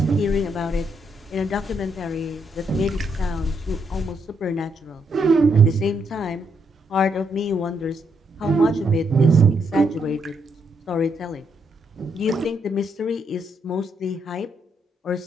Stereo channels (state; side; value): normal; both; correlation 0.76